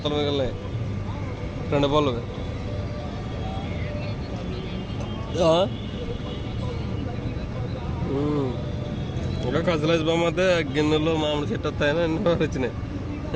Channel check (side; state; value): both; identical; correlation 1.00